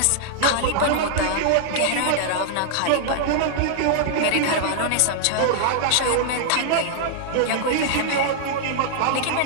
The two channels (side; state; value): both; different; correlation -0.01